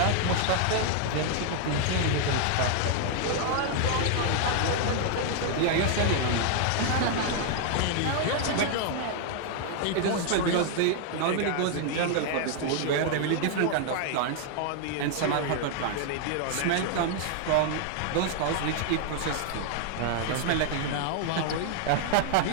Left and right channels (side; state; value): both; different; correlation 0.00